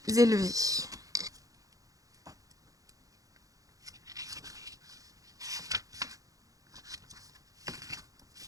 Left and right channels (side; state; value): left; late; 0.17 ms